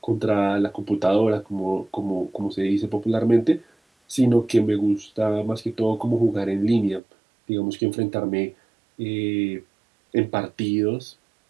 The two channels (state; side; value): drops out; left; at 7.0 s